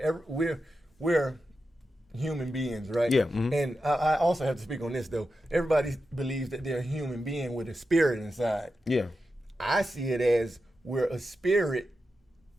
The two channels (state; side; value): normal; both; correlation 0.90